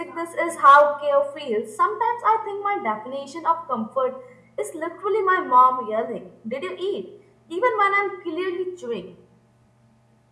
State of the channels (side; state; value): both; identical; correlation 1.00